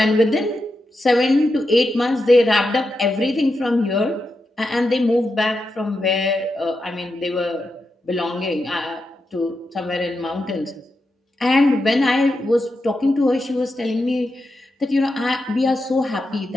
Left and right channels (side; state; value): both; normal; correlation 0.87